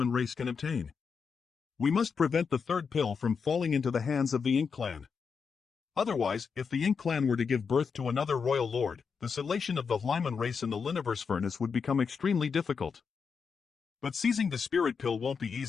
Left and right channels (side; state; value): right; quieter; 5.8 dB